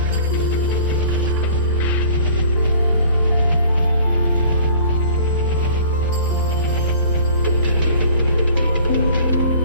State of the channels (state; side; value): inverted; both; correlation -0.49